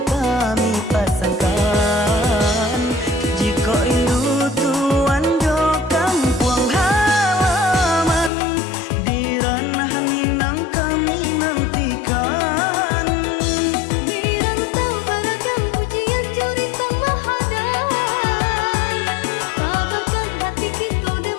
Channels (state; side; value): drops out; right; at 8.3 s